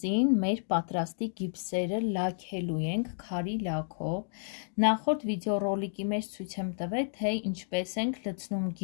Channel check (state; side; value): silent; right; digital silence